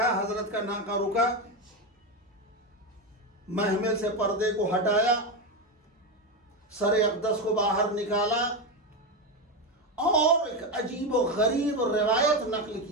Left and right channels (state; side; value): normal; both; correlation 0.13